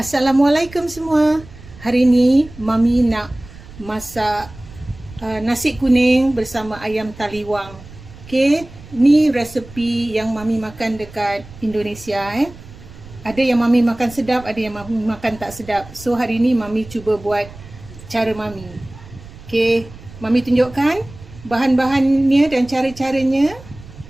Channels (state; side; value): noise; right; rumble, 18 dB below the sound